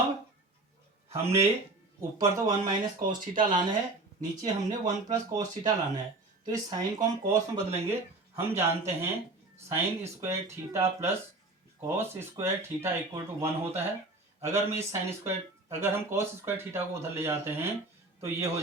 हमने ऊपर तो 1 माइनस कॉस थीटा लाना है, नीचे हमने 1 प्लस कॉस थीटा लाना है। तो इस साइन को हम कॉस में बदलेंगे। हम जानते हैं sine square theta plus cos square theta equal to 1 होता है। अगर मैं इस अगर हम कॉस स्क्वायर थीटा को उधर ले जाते हैं तो ये हो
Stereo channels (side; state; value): left; quieter; 3.0 dB